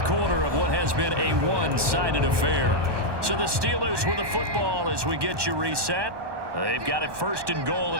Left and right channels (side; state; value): left; late; 1.2 ms